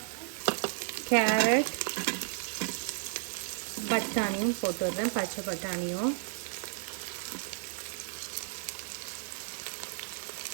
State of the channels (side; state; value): left; silent; digital silence